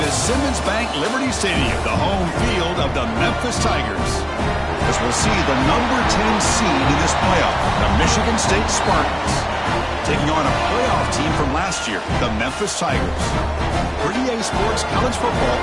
Simmons Bank Liberty Stadium, the home field of the Memphis Tigers. As we'll see the number 10 seed in this playoff, the Michigan State Spartans, taking on a playoff team from last year, the Memphis Tigers. For EA Sports College Football,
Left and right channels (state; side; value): identical; both; correlation 1.00